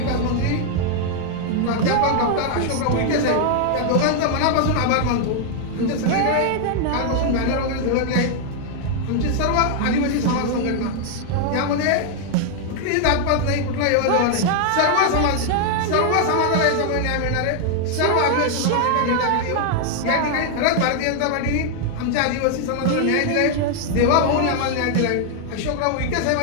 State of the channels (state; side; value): different; both; correlation 0.00